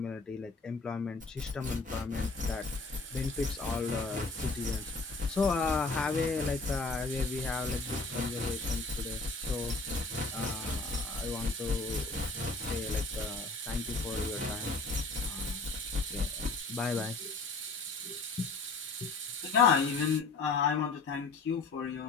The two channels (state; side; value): quieter; right; 3.7 dB